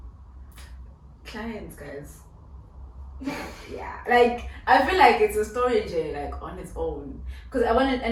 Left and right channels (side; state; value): both; identical; correlation 1.00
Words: Clients, guys. Like, I feel like it's a story, Jay, like on its own, because I wanted,